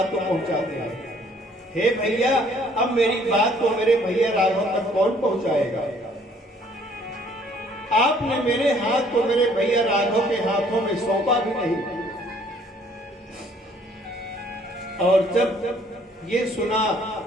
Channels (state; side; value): normal; both; correlation 0.60